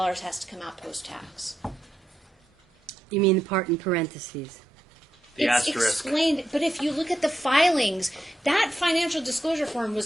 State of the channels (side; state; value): both; normal; correlation 0.84